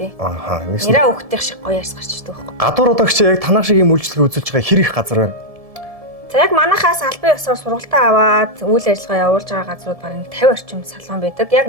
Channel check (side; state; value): left; late; 1.7 ms